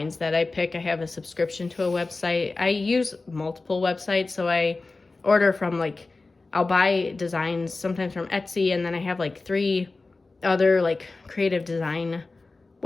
that I pick. I have a subscription to a website. I use multiple websites, so I order from like, I'll buy designs sometimes from Etsy, and then I have like 3 other like creative design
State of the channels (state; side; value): quieter; right; 3.6 dB